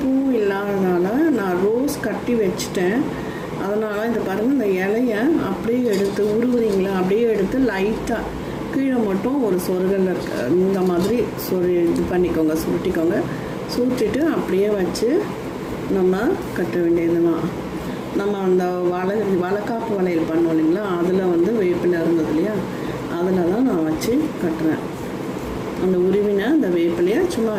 பூவும் இல்லாததால் நான் ரோஸ் கட்டி வச்சுட்டேன். அதனால் இந்த பாருங்கள், இந்த இலையை அப்படியே எடுத்து உருவுறீங்களா, அப்படியே எடுத்து லைட்டாக கீழே மட்டும் ஒரு சொருகல் இருக்க இந்த மாதிரி இது பண்ணிக்கோங்க, சுருட்டிக்கோங்க. சுருட்டிட்டு அப்படியே வச்சு நம்ம கட்ட வேண்டியதுதான். நம்ம அந்த வளைக்காப்பு வளையல் பண்ணோம் இல்லைங்களா, அதில் வேப்பிலை இருந்தது இல்லையா, அதில் தான் நான் வச்சு கட்டுறேன். அந்த உருவினை அந்த வேப்பிலையை சும்மா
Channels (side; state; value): both; identical; correlation 1.00